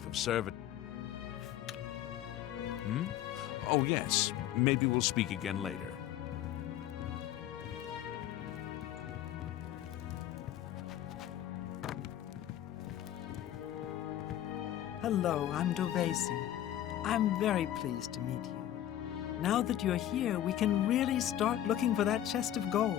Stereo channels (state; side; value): quieter; right; 12.0 dB